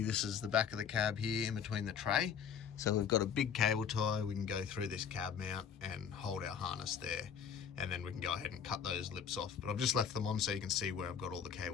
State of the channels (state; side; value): quieter; right; 7.6 dB